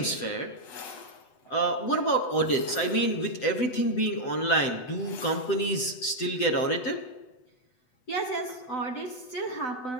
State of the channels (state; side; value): late; right; 8.0 ms